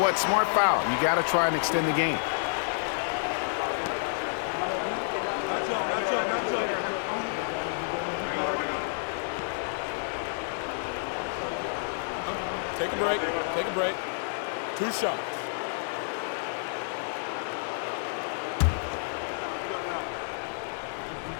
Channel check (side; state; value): right; silent; 58 dB below the other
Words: Smart foul. You got to try and extend the game. Take a break. Take a break. 2 shots.